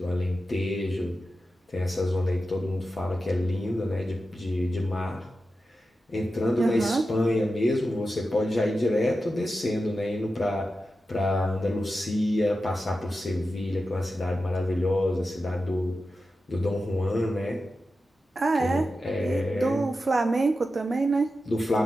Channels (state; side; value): normal; both; correlation 0.91